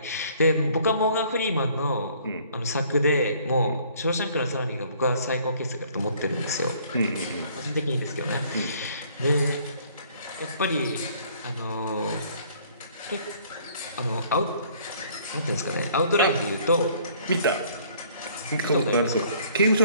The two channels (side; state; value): both; inverted; correlation -0.59